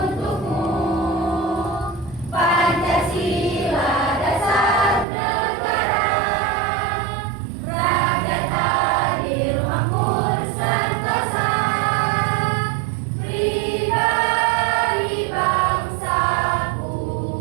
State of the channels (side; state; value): left; drops out; at 5.1 s